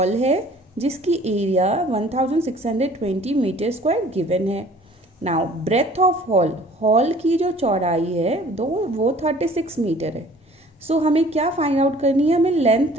है जिसकी area 1620 metre square given है. नाउ ब्रेथ ऑफ हॉल की जो चौड़ाई है वो 36 मीटर है. सो हमें क्या फाइंड आउट करनी है? हमें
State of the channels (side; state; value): both; normal; correlation 0.51